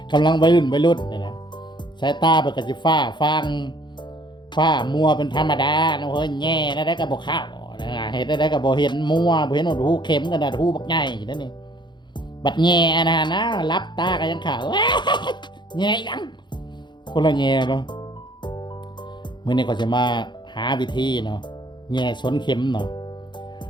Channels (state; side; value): late; right; 0.22 ms